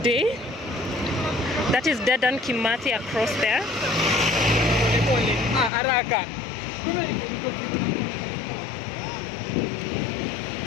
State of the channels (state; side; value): drops out; right; at 5.7 s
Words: That is Dedan Kimathi across there.